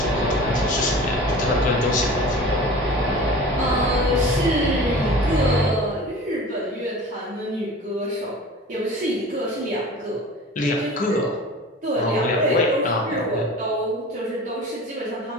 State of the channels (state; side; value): normal; both; correlation 0.39